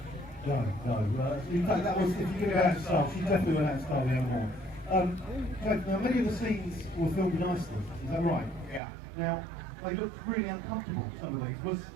No. In fact, that was, if you give it out to Star, she definitely went out to Star Jeor Mormont. Now, many of the scenes were filmed in Iceland, is that right? Yeah. Now, they looked really uncomfortable, some of these.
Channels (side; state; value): left; drops out; at 8.8 s